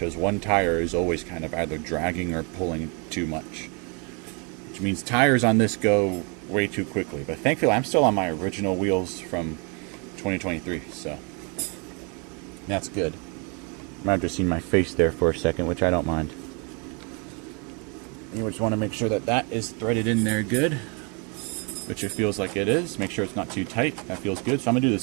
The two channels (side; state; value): left; quieter; 34.2 dB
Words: one tire is always kind of either dragging or pulling too much. Which means tires on this go way too quickly. But thankfully I'm still on my original wheels from 2023, so that's good. You might have just seen my face there for a second, which I don't mind. You just want to make sure that that is threaded in there good, which it feels like it is. Make sure it's not too tight. That feels good. So I'm going to do the